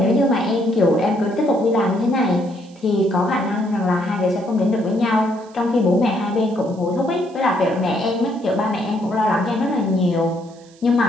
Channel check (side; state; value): right; noise; hiss, 28 dB below the sound